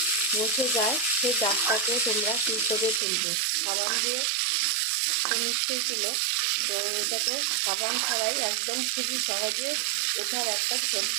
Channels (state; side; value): drops out; left; at 3.0 s